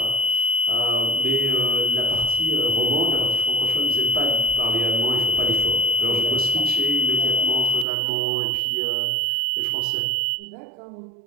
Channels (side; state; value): left; drops out; at 7.9 s